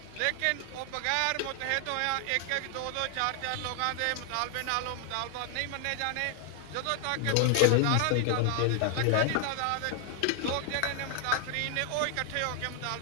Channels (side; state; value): both; different; correlation 0.00